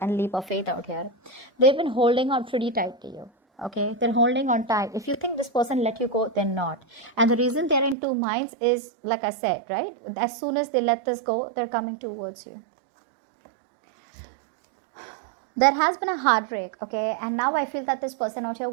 leap of faith out here. They've been holding on pretty tight to you. Okay, they're holding on tight. If you think this person let you go, they're not. And the reason they're in two minds is, like I said, right? As soon as they let this go, they're coming towards you. There has been a heartbreak, okay? And now I feel that this person out here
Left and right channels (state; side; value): drops out; left; at 8.0 s